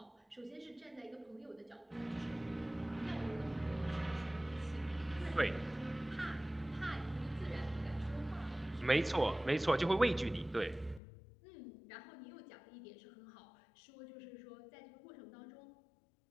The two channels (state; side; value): drops out; right; at 11.0 s